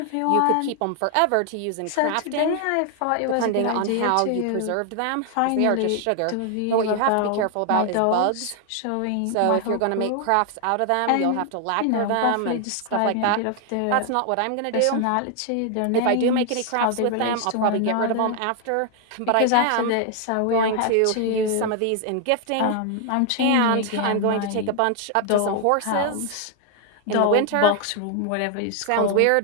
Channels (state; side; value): different; both; correlation 0.00